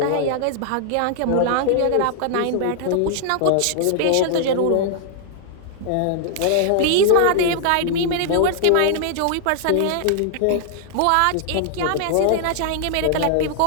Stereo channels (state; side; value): different; both; correlation -0.01